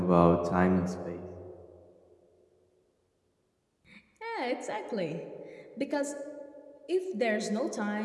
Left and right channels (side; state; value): both; identical; correlation 1.00